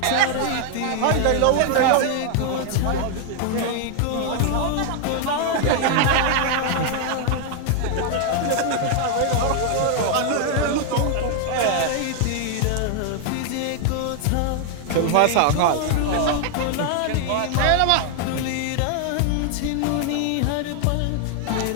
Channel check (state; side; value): different; both; correlation 0.00